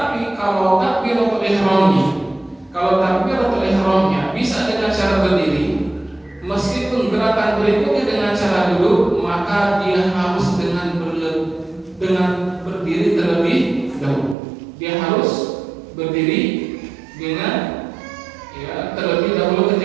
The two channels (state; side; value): drops out; left; at 14.4 s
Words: kalau takbiratul ihramnya bisa dengan cara berdiri, meskipun gerakan berikutnya dengan cara duduk, maka dia harus dengan berdiri terlebih dahulu. Dia harus berdiri dengan terlebih dahulu